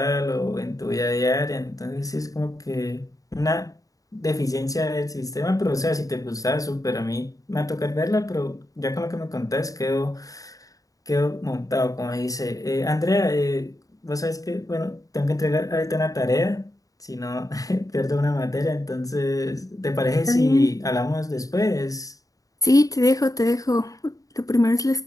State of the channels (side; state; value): right; late; 0.17 ms